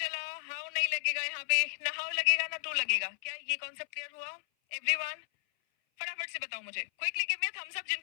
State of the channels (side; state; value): right; silent; 55 dB below the other